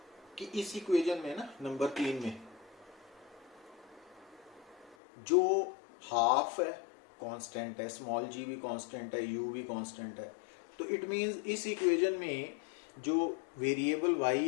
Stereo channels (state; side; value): drops out; right; at 5.0 s